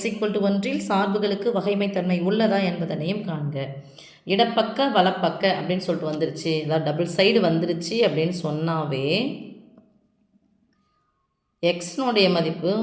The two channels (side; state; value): both; identical; correlation 1.00